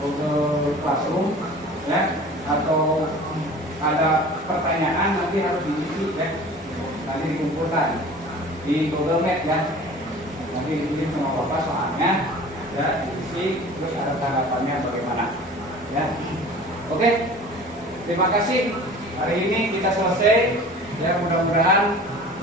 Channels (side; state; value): both; normal; correlation 0.42